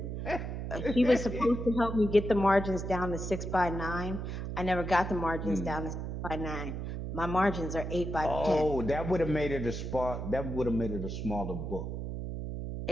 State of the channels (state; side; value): noise; right; hum, 5 dB below the sound